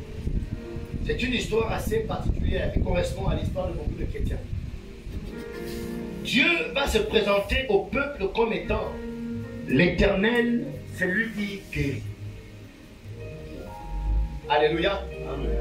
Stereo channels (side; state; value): both; identical; correlation 1.00